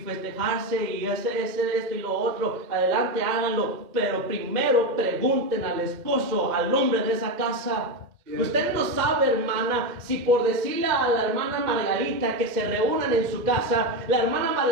y hacer esto y lo otro, adelante háganlo. Pero primero pregunten al esposo, al hombre de esa casa. Cierto. Usted no sabe, hermano, semana, si por decirle a la hermana Margarita que se reúnan en su casa, la hermana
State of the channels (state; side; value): late; left; 2.1 ms